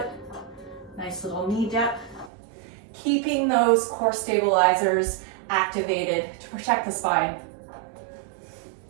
Nice little knee dip. Keeping those core stabilizers activated to protect the spine.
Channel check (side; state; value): left; drops out; at 2.3 s